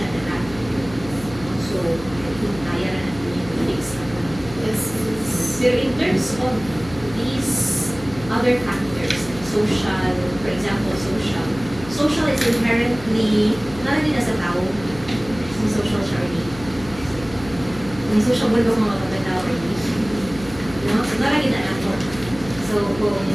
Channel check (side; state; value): left; noise; hum, 15 dB below the sound